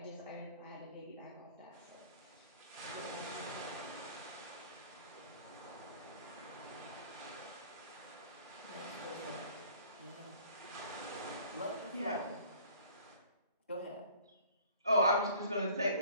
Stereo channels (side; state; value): both; inverted; correlation -0.51